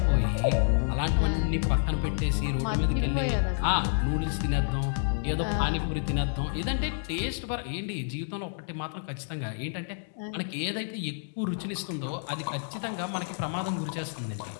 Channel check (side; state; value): right; silent; digital silence